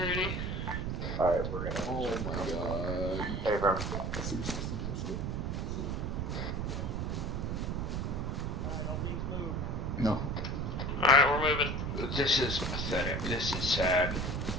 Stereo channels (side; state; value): right; noise; rumble, 1 dB below the sound